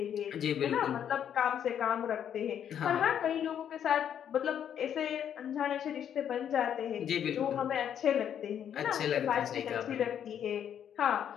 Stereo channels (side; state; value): right; quieter; 9.2 dB